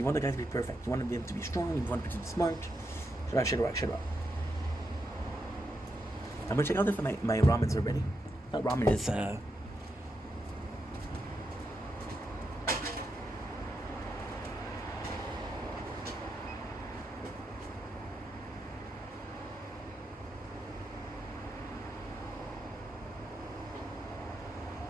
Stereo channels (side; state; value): both; normal; correlation 0.84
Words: want the guy to be perfect. You want him to be strong. You want him to be smart. Shut up. I'm gonna check out if my ramens are ready. Not ramen is...